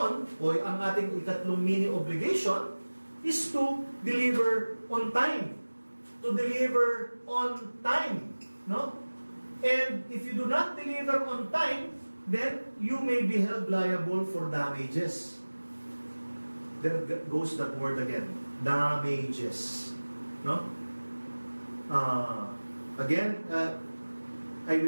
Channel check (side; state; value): both; inverted; correlation -1.00